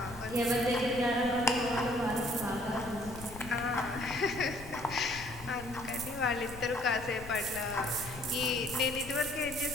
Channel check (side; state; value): left; noise; rumble, 14 dB below the sound